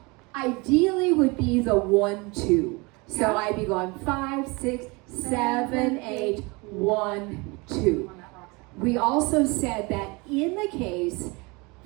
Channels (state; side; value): quieter; left; 26.9 dB